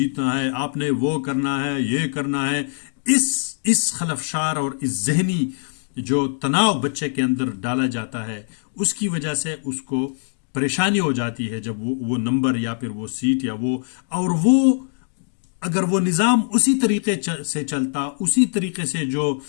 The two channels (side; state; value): right; silent; digital silence